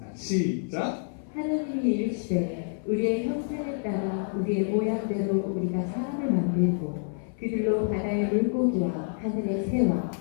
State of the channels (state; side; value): silent; right; 60 dB below the other